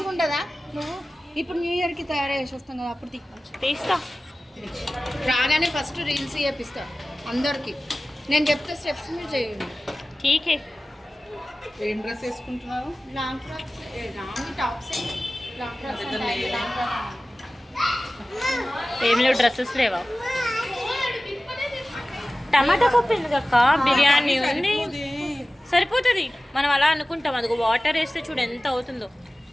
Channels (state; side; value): normal; both; correlation 0.96